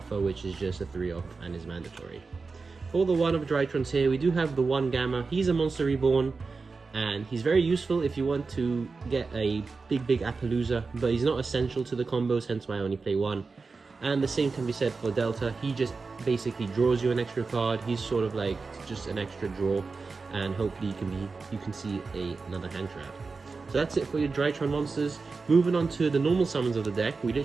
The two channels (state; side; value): quieter; left; 4.3 dB